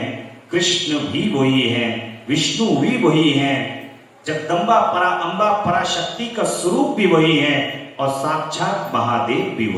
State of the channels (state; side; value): identical; both; correlation 1.00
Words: कृष्ण भी वही है, विष्णु भी वही है, जगदम्बा परा अम्बा पराशक्ति का स्वरूप भी वही है, और साक्षात महादेव भी